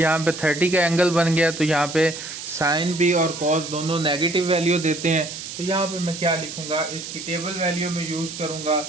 पे 30 का एंगल बन गया। तो यहाँ पे साइन भी और कॉस दोनों नेगेटिव वैल्यू देते हैं। तो यहाँ पे मैं क्या लिखूँगा, इसकी टेबल वैल्यू में यूज़ करूँगा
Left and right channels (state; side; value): noise; right; hiss, 9 dB below the sound